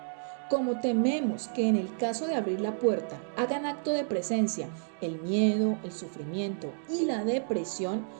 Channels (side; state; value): left; silent; digital silence